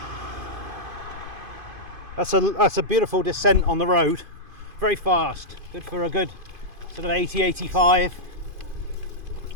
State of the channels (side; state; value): left; late; 2.5 ms